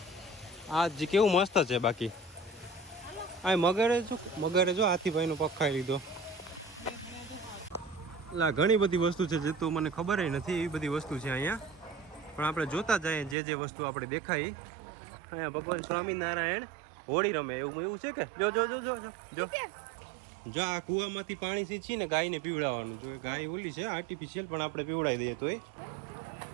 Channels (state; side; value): drops out; left; at 13.4 s